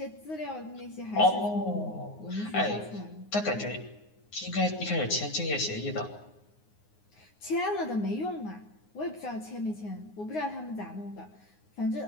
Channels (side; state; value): right; late; 9.6 ms